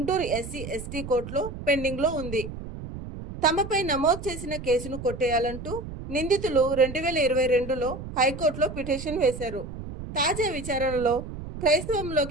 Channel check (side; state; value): right; noise; rumble, 10 dB below the sound